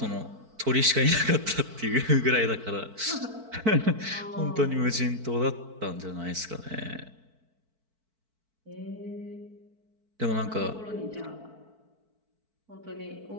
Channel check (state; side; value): late; left; 4.5 ms